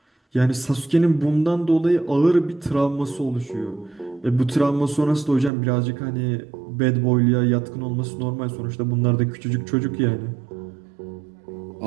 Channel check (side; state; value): left; drops out; at 5.5 s